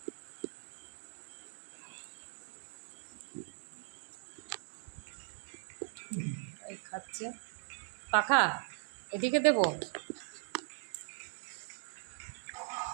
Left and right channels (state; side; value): silent; left; digital silence